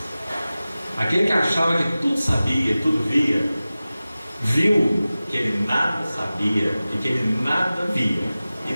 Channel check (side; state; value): both; inverted; correlation -0.96